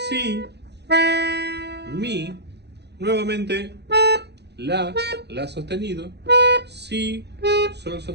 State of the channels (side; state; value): left; late; 0.49 ms